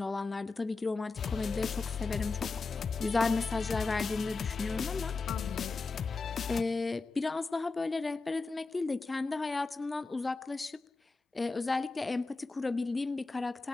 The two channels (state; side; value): quieter; right; 3.9 dB